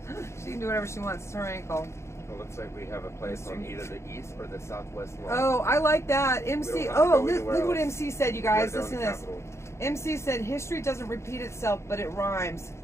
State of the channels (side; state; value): right; late; 0.13 ms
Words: She can do whatever she wants. It's her ankle. It looks like we have a place on either the east or the southwest line. Oh, I like that. MC. Oh, look what MC said, you guys. Listen to this. MC said, history doesn't repeat itself, but it rhymes.